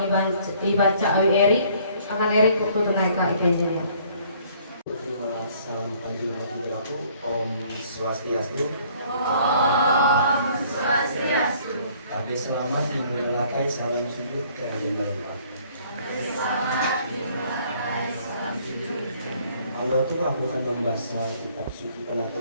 dibaca oleh Erik. Akan Erik waktu tenaga IPJ-nya. Salam pagi waktu Om Swastiastu. Om Swastiastu. Kami selamat dimulai salam sujud kerajaan Allah. Allah itu aku akan membaca kitab suci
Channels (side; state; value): both; inverted; correlation -0.59